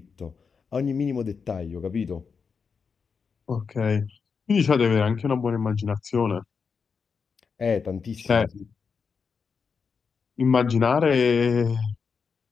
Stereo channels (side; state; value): right; quieter; 5.6 dB